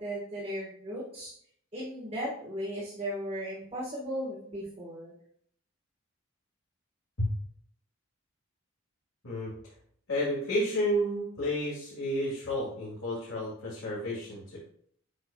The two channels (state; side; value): normal; both; correlation 0.36